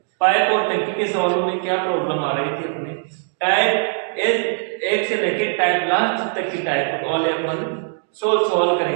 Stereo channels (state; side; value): silent; left; digital silence